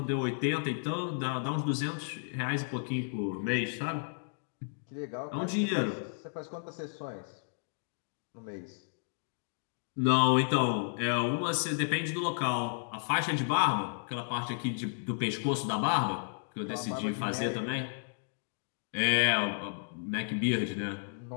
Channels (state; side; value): silent; right; digital silence